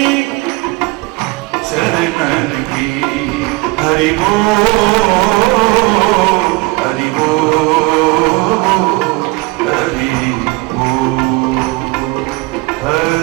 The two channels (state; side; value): quieter; left; 23.6 dB